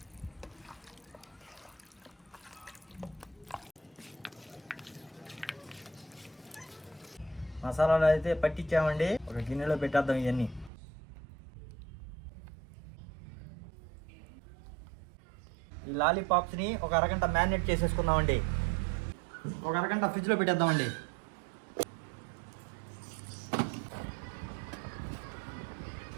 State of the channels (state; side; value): drops out; left; at 10.7 s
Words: మసాలాలు అయితే పట్టించామండి. ఒక గిన్నెలో పెట్టేద్దాం ఇవన్నీ. ఈ లాలీపాప్స్ని ఒక అరగంట మ్యారినేట్ చేసేసుకుందామండి. ఒక అరగంట ఫ్రిడ్జ్లో పెట్టేద్దామండి.